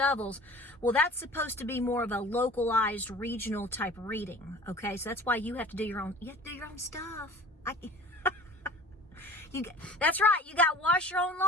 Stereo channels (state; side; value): normal; both; correlation 0.43